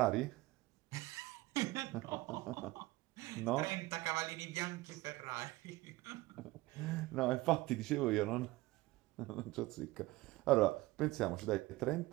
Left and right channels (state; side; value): quieter; left; 19.5 dB